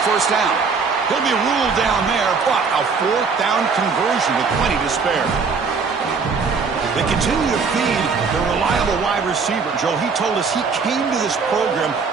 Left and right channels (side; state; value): left; quieter; 5.1 dB